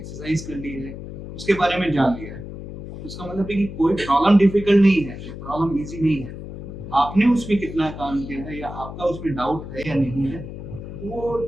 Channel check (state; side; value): noise; left; hum, 10 dB below the sound